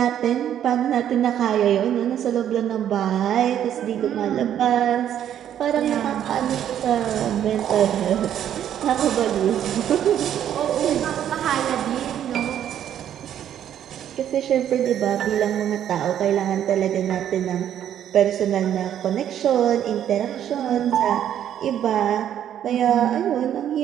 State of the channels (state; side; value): quieter; left; 10.3 dB